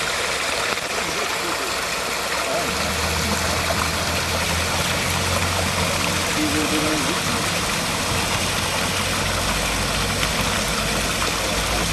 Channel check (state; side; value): identical; both; correlation 1.00